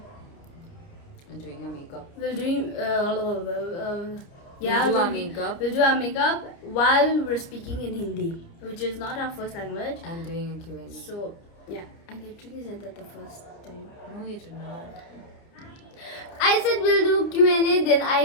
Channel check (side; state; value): right; late; 30 ms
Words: doing your makeup. we'll doing We'll do our makeup. We'll do our makeup while we're speaking in Hindi, which is not our first language. I'm doing a Q&A. So yeah, I literally said that the first time. No, you did not. I said we'll do Q&A, then